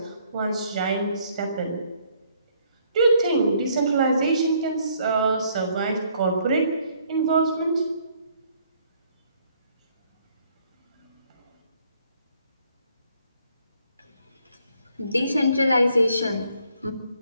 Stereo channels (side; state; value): both; inverted; correlation -0.66